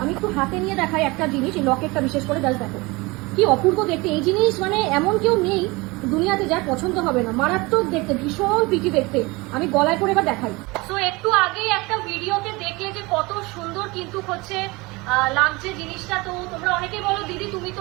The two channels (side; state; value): left; quieter; 23.9 dB